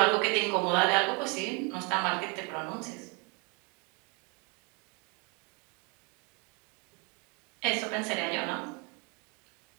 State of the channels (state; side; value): quieter; left; 32.3 dB